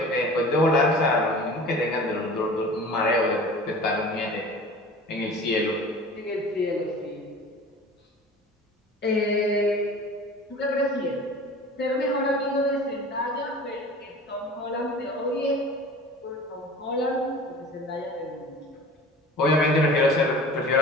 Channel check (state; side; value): normal; both; correlation 0.41